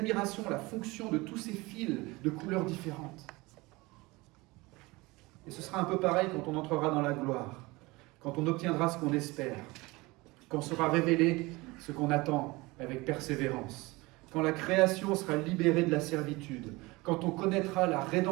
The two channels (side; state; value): left; quieter; 22.7 dB